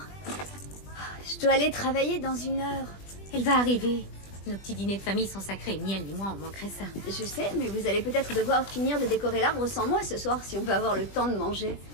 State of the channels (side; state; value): right; late; 20 ms